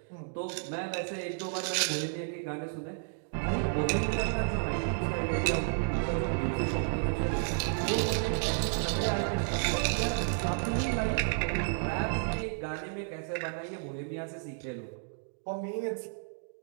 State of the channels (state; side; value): silent; left; digital silence